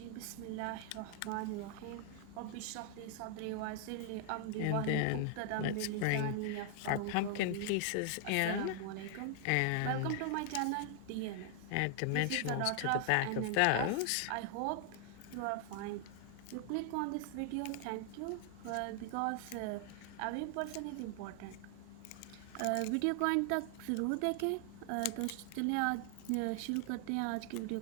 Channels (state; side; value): different; both; correlation 0.00